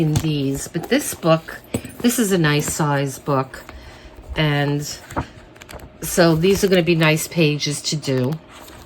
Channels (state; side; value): identical; both; correlation 1.00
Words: these, but this book, this is a nice size book. And so these are going to be nice pages to do.